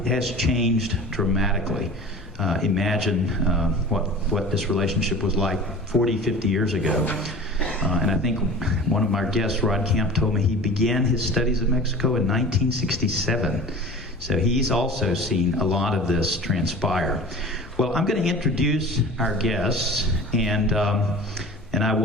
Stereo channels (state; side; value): noise; left; rumble, 19 dB below the sound